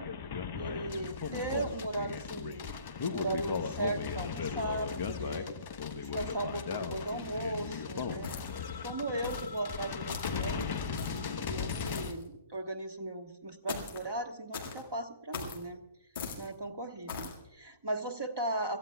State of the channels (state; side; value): inverted; both; correlation -0.50